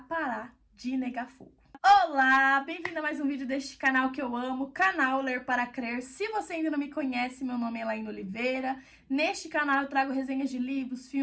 de negar fogo. Olá, bem-vindo a mais um vídeo deste canal que eu amo, canal Ler para Crer. Se você ainda não me conhece, meu nome é Elaine Oliveira. Neste canal eu trago resenhas de livros,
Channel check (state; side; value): identical; both; correlation 1.00